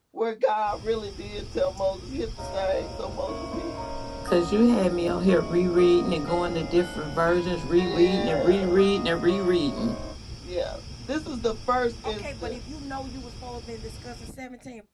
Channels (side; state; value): both; identical; correlation 1.00